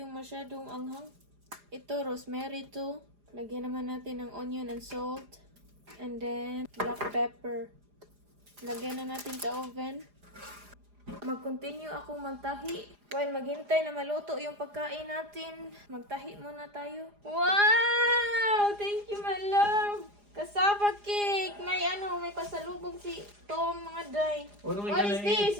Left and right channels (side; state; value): left; late; 4.9 ms